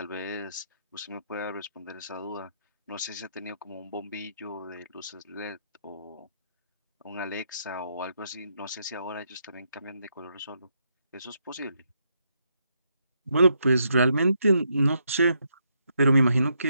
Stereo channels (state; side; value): inverted; both; correlation -0.78